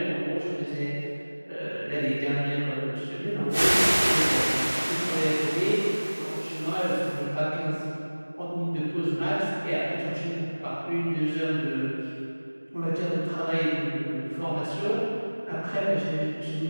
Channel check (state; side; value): inverted; both; correlation -1.00